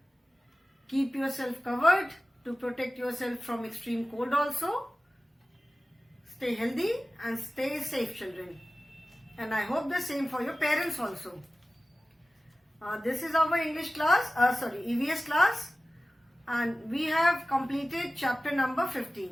Keep yourself covered to protect yourself from extreme cold also. Stay healthy and stay safe, children. And I hope the same for your parents also. This is our English class, EVS class, and we have completed chapter number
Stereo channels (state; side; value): normal; both; correlation 0.96